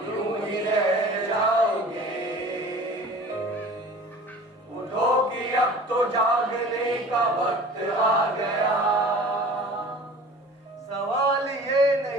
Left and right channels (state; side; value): normal; both; correlation 0.43